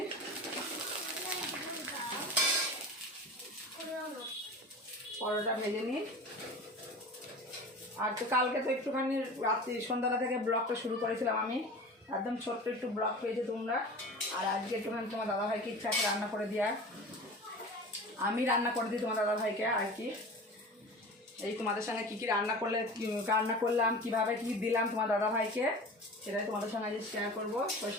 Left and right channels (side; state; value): both; normal; correlation 0.36